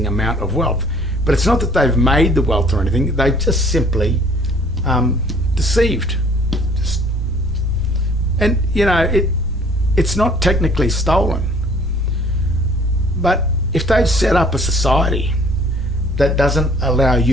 amount of wealth. But it's not that they've made the wealth or anything, they've just simply deceived. And you know, it's not technically stolen. But if they've set up a society that doesn't allow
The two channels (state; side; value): normal; both; correlation 0.56